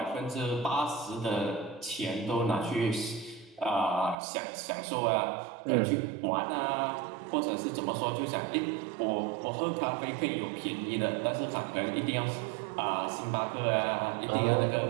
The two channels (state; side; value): drops out; left; at 4.2 s